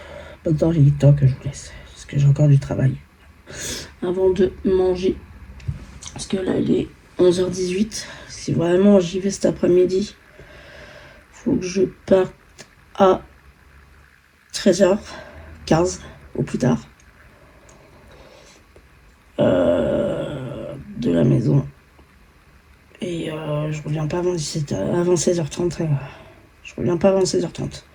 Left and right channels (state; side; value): identical; both; correlation 1.00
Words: maintenant il est temps que je vous laisse. Parce que j'ai encore du travail. Avant de manger. Parce que là il est 11h18. Si vraiment j'y vais cet après-midi, faut que je parte à 13h15 au plus tard. De la maison. Et je reviens pas avant 17h, avant 16h30. Je reviens pas avant 16h30.